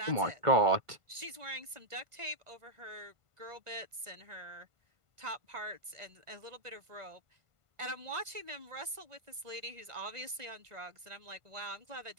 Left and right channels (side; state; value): left; late; 1.5 ms